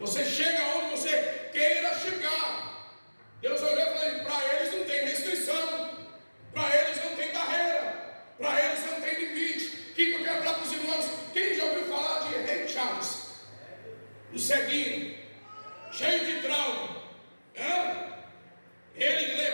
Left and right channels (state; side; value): inverted; both; correlation -1.00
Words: chega onde você queira chegar. Deus olhou e falou: para eles não tem restrição, para eles não tem ceguinho, cheio de trauma. Ele